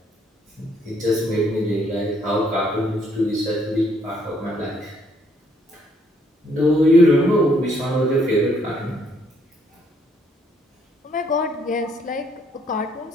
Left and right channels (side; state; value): both; normal; correlation 0.68